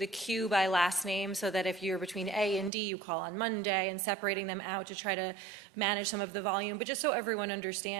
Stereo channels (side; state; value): left; drops out; at 2.7 s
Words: queue by last name so that if you're between A and D, you call on Monday, and separating them out to try to manage some of the volume. But just so everyone